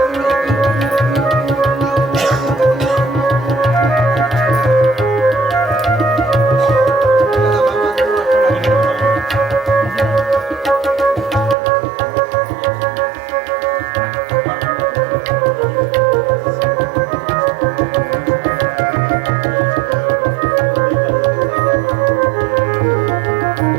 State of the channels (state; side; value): drops out; left; at 11.6 s